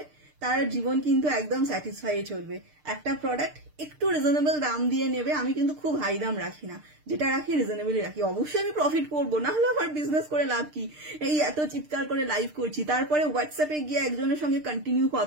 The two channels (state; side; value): late; left; 6.6 ms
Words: তার জীবন কিন্তু একদম স্যাটিসফাই চলবে। একটা প্রোডাক্ট একটু রিজনেবল দাম দিয়ে নেবে, আমি কিন্তু খুব হাই দাম রাখি না, যেটা রাখি রিজনেবলই রাখি। অবশ্যই আমি প্রফিট করবো, না হলে আমার বিজনেস করে লাভ কি? এই এত চিৎকার করে লাইভ করছি, তারপরে হোয়াটসঅ্যাপে গিয়ে একজনের সঙ্গে কন্টিনিউ